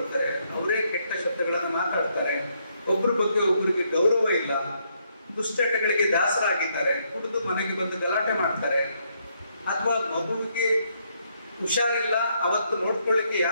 ಅವರೇ ಕೆಟ್ಟ ಶಬ್ದಗಳನ್ನು ಮಾತಾಡ್ತಾರೆ, ಒಬ್ರ ಬಗ್ಗೆ ಒಬ್ರಿಗೆ ಗೌರವ ಇಲ್ಲ, ದುಶ್ಚಟಗಳಿಗೆ ದಾಸರಾಗಿದ್ದಾರೆ, ಕುಡಿದು ಮನೆಗೆ ಬಂದು ಗಲಾಟೆ ಮಾಡ್ತಾರೆ, ಅಥವಾ ಮಗುವಿಗೆ ಹುಷಾರಿಲ್ಲ, ಅವತ್ತು ನೋಡ್ಕೊಳ್ಳಿಕ್ಕೆ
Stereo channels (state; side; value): inverted; both; correlation -0.74